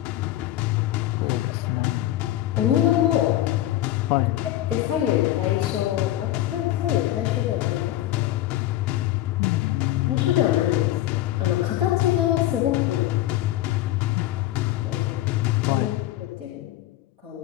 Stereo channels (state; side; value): quieter; right; 14.4 dB